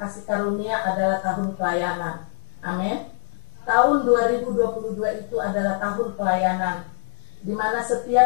Karunia adalah tahun pelayanan. Amin. Tahun 2022 itu adalah tahun pelayanan, di mana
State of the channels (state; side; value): silent; right; 63 dB below the other